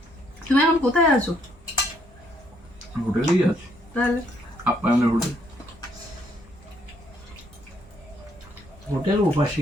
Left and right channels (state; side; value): normal; both; correlation 0.70